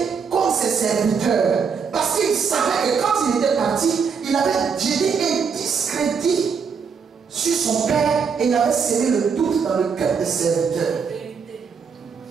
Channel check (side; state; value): left; quieter; 6.0 dB